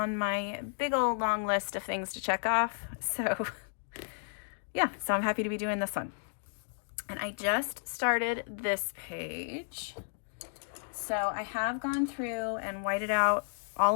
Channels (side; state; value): right; silent; digital silence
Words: my big old long list of things to check off. So yeah, so I'm happy to be doing this one. And I just started this page. So I have gone through and whited out